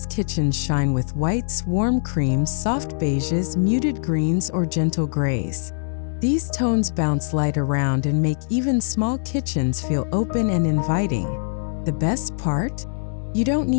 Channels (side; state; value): right; silent; 64 dB below the other